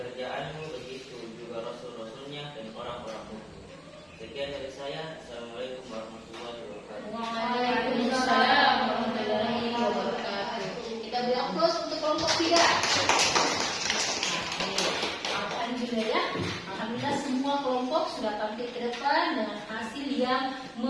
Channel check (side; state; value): both; identical; correlation 1.00